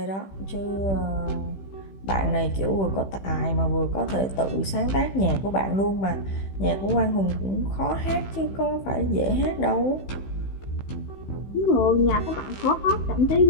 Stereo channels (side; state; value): right; late; 15 ms